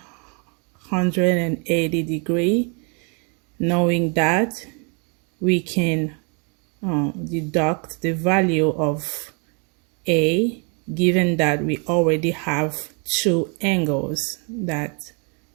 degrees. Knowing that, we can deduct the value of A, given that we already have two angles that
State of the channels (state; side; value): quieter; left; 35.8 dB